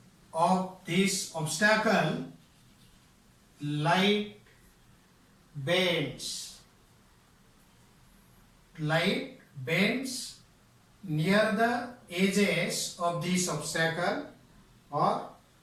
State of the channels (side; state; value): both; identical; correlation 1.00